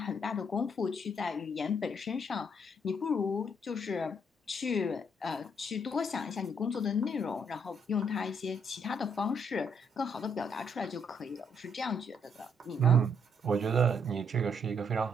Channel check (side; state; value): both; normal; correlation 0.71